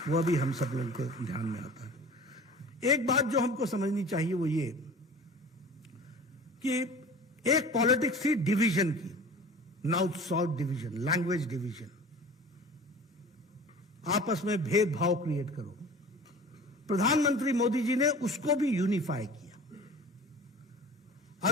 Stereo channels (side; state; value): both; normal; correlation 0.41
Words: वह भी हम सब लोगों को ध्यान में आता है। एक बात जो हमको समझनी चाहिए वो ये कि एक पॉलिटिक्स थी डिवीजन की, north south division, language division, आपस में भेदभाव क्रिएट करो। प्रधानमंत्री मोदी जी ने उसको भी यूनिफाई किया।